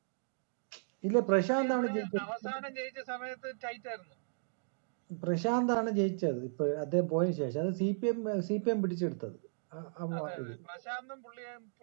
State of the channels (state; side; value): silent; left; digital silence